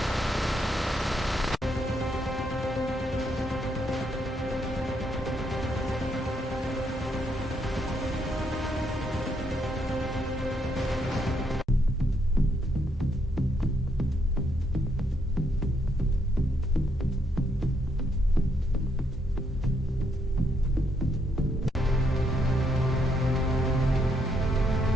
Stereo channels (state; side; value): normal; both; correlation 0.75